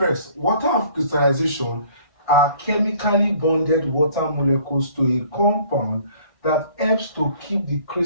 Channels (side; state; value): right; late; 1.6 ms